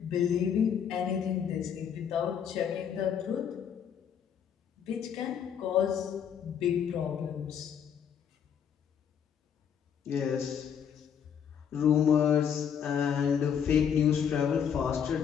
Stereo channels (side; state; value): right; quieter; 8.0 dB